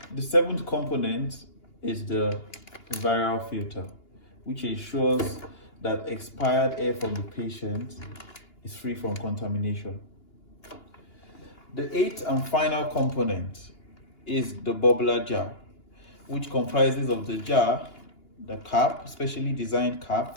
The seventh component is the viral filter, which ensures that expired air from the patient is free from contamination. The eighth and final component is the bubbler jar, which comprises of the jar, the cap, specially designed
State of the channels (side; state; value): right; late; 2.9 ms